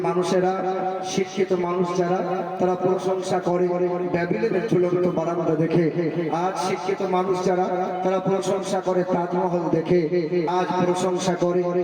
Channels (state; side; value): identical; both; correlation 1.00